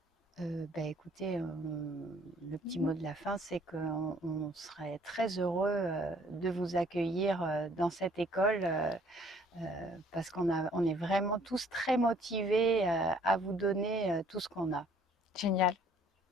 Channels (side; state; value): both; normal; correlation 0.59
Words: Écoutez, le petit mot de la fin, c'est qu'on serait très heureux de vous accueillir dans cette école, parce on est vraiment tous très motivés à vous donner tout ce qu'on a. Génial.